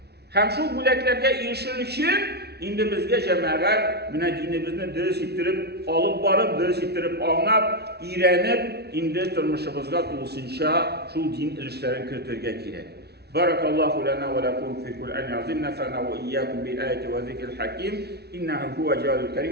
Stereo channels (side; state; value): left; late; 0.48 ms